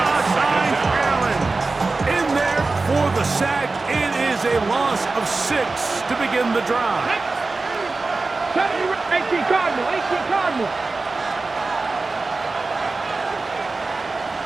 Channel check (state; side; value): quieter; left; 3.6 dB